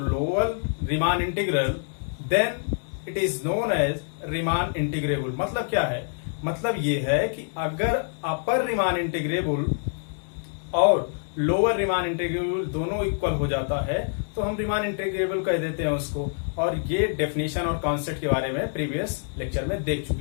Riemann integral then it is known as Riemann integrable. मतलब क्या है? मतलब ये है कि अगर अपर रीमान इंटीग्रेबल और लोअर रीमान इंटीग्रेबल दोनों इक्वल हो जाता है तो हम रीमान इंटीग्रेबल कह देते हैं उसको। और ये डेफिनेशन और कॉन्सेप्ट के बारे में प्रीवियस लेक्चर में देख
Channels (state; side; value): silent; right; 61 dB below the other